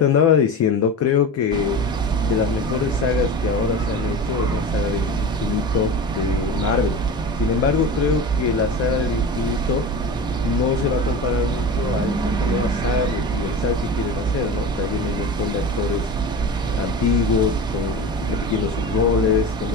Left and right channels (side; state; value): both; normal; correlation 0.30